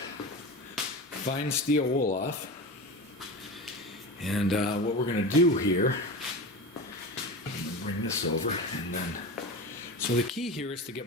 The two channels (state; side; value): normal; both; correlation 0.28